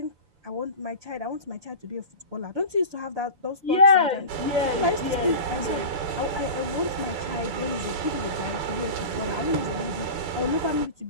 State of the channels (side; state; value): left; late; 6.9 ms